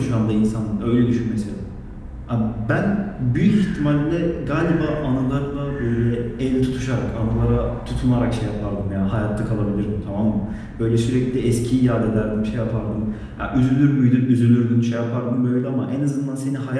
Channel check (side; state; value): both; identical; correlation 1.00